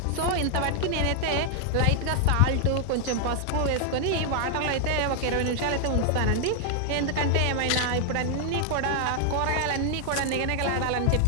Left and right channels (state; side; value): different; both; correlation 0.00